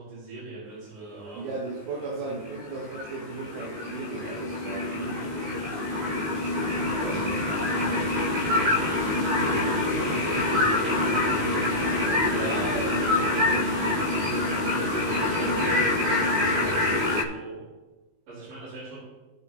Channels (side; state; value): left; late; 19 ms